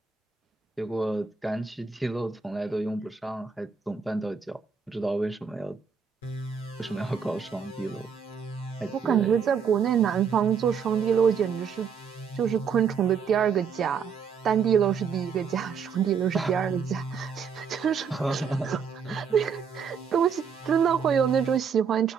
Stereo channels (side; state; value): left; quieter; 6.5 dB